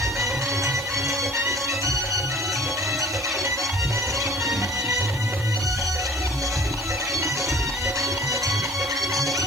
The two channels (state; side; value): noise; right; hiss, 19 dB below the sound